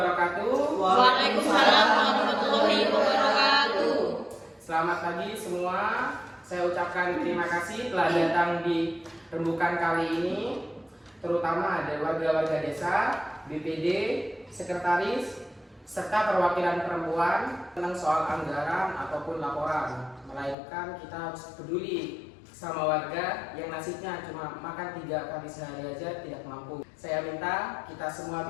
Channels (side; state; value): right; drops out; at 20.6 s